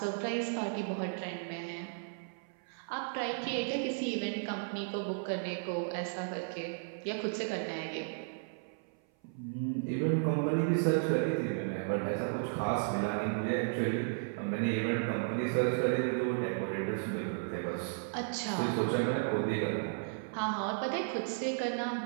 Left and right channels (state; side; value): silent; left; 55 dB below the other